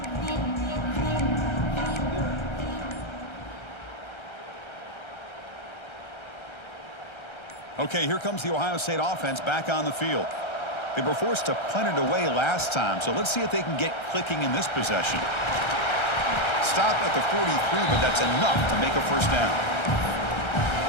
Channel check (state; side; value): late; right; 1.3 ms